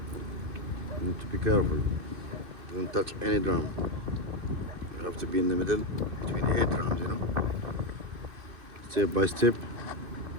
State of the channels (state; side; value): late; left; 2.6 ms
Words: you need to be careful. Don't touch any drum. You have to be in the middle between the 8 drums, you know. Step by step.